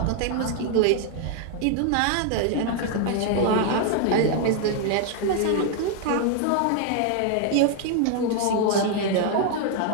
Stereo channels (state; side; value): different; both; correlation 0.00